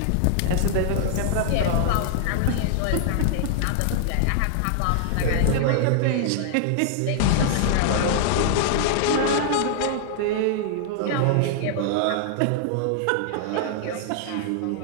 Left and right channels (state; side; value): different; both; correlation -0.01